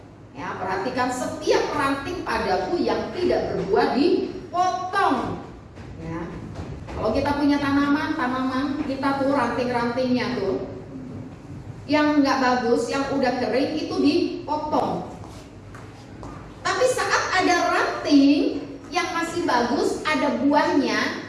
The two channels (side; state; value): both; identical; correlation 1.00